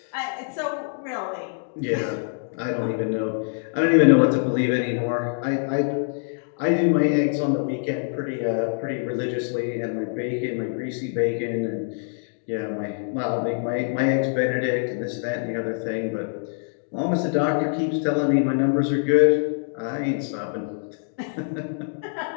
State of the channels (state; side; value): silent; right; digital silence